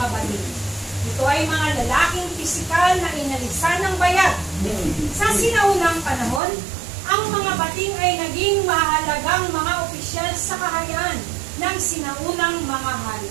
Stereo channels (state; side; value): drops out; left; at 6.4 s